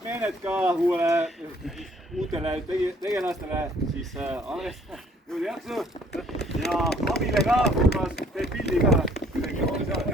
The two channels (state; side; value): normal; both; correlation 0.60